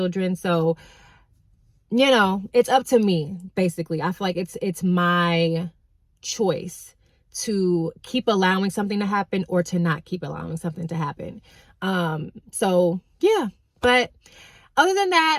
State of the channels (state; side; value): identical; both; correlation 1.00